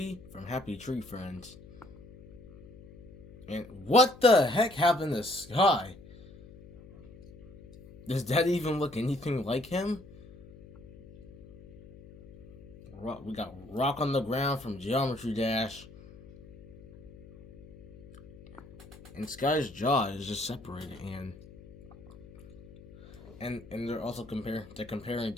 from Happy Tree Friends. And what the heck happened to Sky? Does that even look anything like him? We got Rock on the Ground from Geometry Dash. And Sky's jaw is just separated, and they're also comparing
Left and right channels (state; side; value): noise; left; hum, 19 dB below the sound